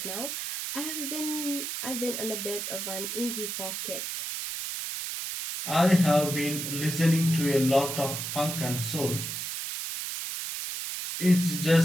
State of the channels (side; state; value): right; noise; hiss, 4 dB below the sound